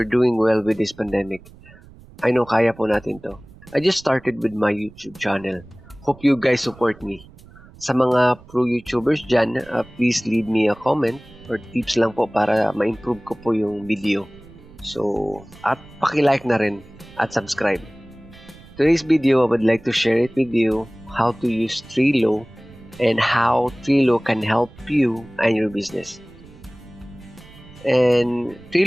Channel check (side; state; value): right; noise; rumble, 22 dB below the sound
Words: doing well with this pandemic. I know kaya po natin to. I just started with my YouTube channel. Hope you guys support me. Sa mga pro YouTubers dyan, please leave me a comment or tips lang po para ma-improve ko po yung video. So, at paki-like na rin at subscribe. Today's video, I would like to share it with you how to use Trello and how Trello can help you and your business. And